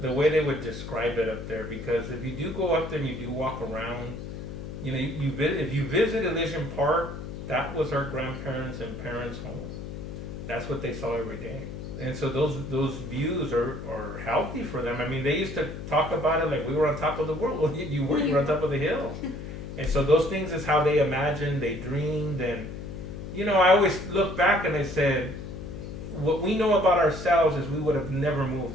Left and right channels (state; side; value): noise; left; hum, 9 dB below the sound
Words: way they would describe it up there, because if you do go up there and you do walk around, you know, if you visit Elysian Park, that was our grandparents' and parents' home. That's what they saw every day. And so those views are healthy for them. I mean, they used to talk about it like we were on top of the world. Well, you were on top of the hill. And so those things is how they imagined, they dreamed. And, you know, I always look back and I said, what we know about ourselves is we would have never